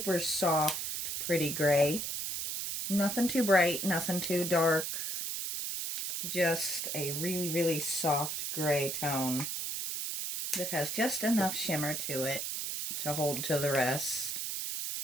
soft, pretty gray. Nothing too bright, nothing too dark. Just a really soft gray tone that has just enough shimmer to it to hold to the rest.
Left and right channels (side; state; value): right; noise; hiss, 3 dB below the sound